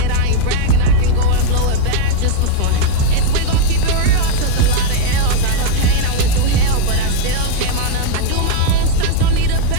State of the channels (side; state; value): both; different; correlation 0.00